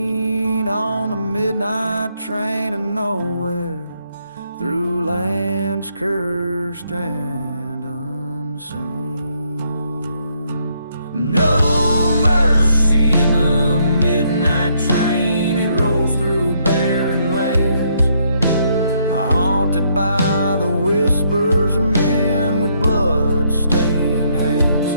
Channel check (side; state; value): both; inverted; correlation -0.73